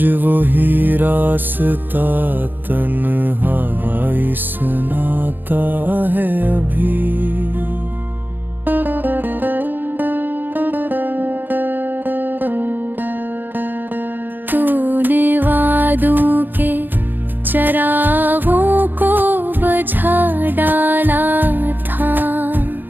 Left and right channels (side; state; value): left; late; 0.091 ms